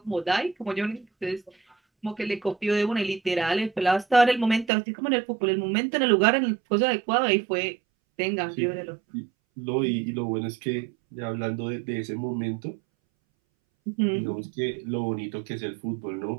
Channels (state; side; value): drops out; left; at 4.7 s